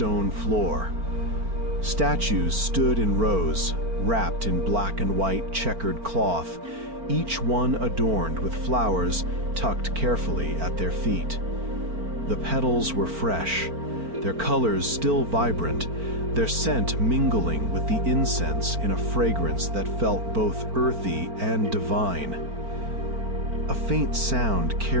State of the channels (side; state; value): left; late; 4.4 ms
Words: floor. Statues stood in rows, wrapped in black and white checkered cloth, each one adorned with flowers tucked carefully at their feet. The petals were fresh, their colors still vibrant, their scent mingling with the incense in a fragrance that felt both earthy and divine. A faint sound